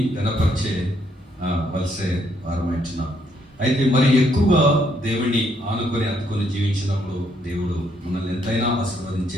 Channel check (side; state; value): both; normal; correlation 0.72